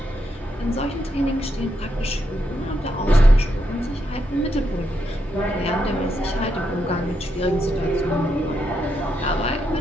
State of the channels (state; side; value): normal; both; correlation 0.81